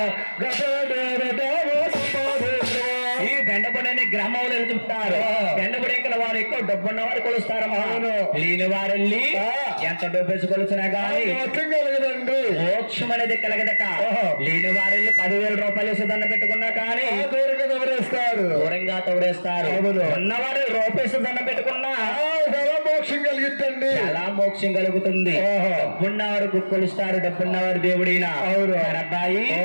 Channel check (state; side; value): inverted; both; correlation -1.00